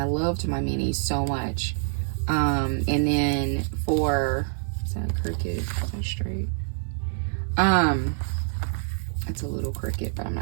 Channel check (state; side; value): silent; left; 59 dB below the other